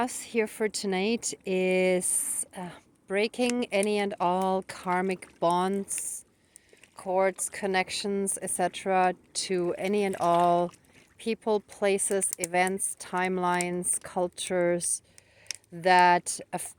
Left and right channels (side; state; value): both; identical; correlation 1.00